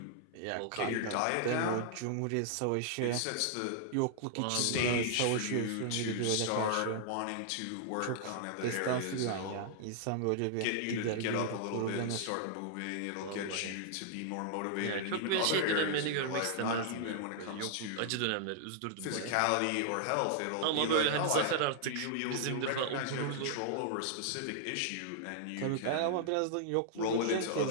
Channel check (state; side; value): different; both; correlation -0.01